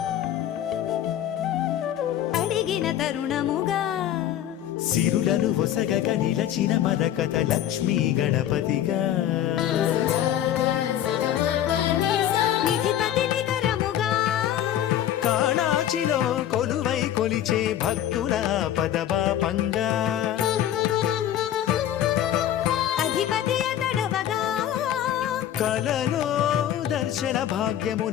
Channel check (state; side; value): quieter; right; 11.3 dB